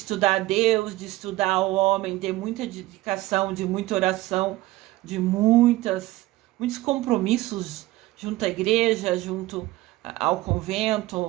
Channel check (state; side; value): quieter; left; 18.1 dB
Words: a Deus, de estudar o homem, de muita dedicação, de muita oração, de muitos compromissos junto à igreja, junto ao